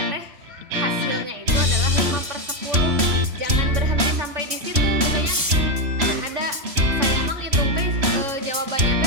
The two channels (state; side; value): late; left; 3.1 ms